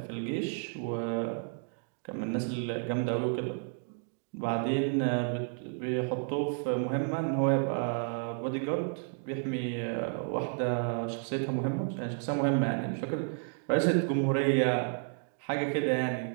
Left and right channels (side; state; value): left; silent; 57 dB below the other